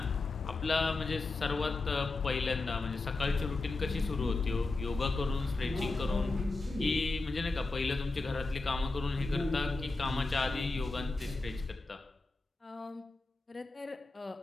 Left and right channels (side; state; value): right; quieter; 3.4 dB